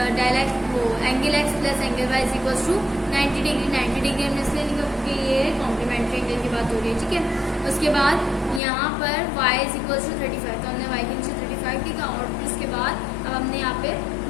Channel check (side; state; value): right; drops out; at 8.6 s